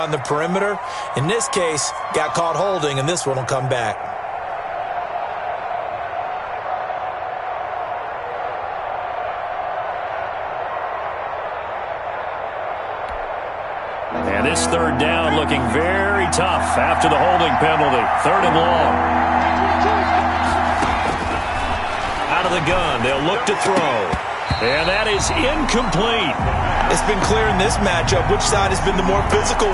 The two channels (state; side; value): identical; both; correlation 1.00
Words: the perimeter. In this case, got caught holding, and this one will come back. And this 3rd down looking very tough after the holding penalty. 3rd and long. Out of the gun, they'll look to throw. And that is incomplete. It's been clear in this matchup which side has been the more physical